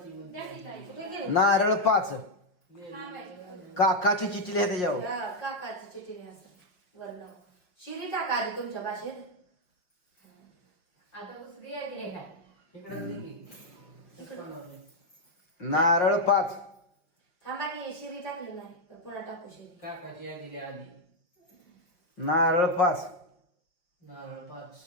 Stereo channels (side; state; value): right; late; 5.5 ms